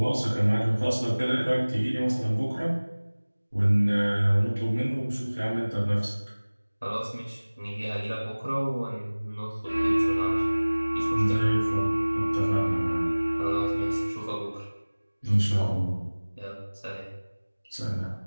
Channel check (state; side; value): inverted; both; correlation -1.00